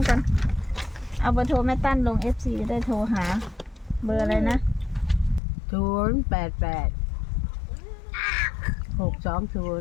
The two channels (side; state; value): right; drops out; at 5.4 s